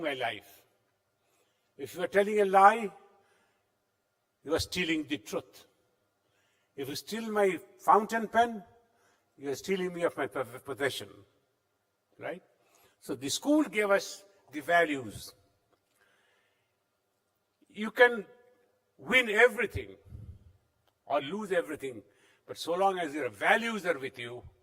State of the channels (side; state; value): both; identical; correlation 1.00